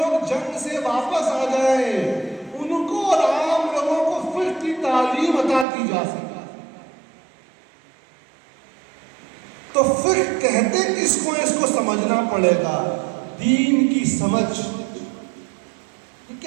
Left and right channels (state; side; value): drops out; left; at 5.7 s